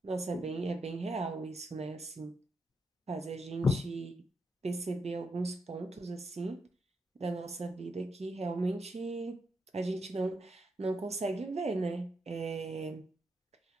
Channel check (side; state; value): both; normal; correlation 0.82